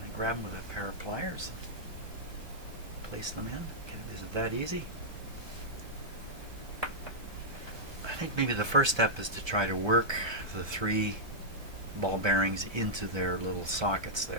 I grab them with a pair of pliers and place them in? Is it that easy? I think maybe the first step is to try to work the 3 ball bearings into their little sockets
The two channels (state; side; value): late; left; 1.2 ms